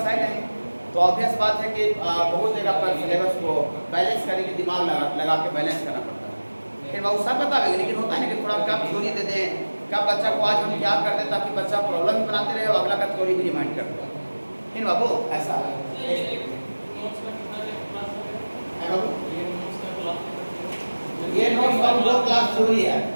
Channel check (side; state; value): both; inverted; correlation -1.00